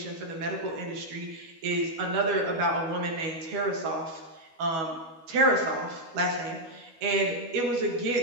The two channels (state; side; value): late; left; 12 ms